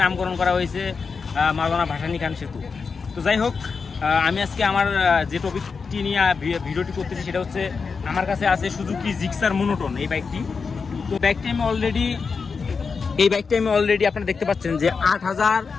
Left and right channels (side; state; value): right; quieter; 5.1 dB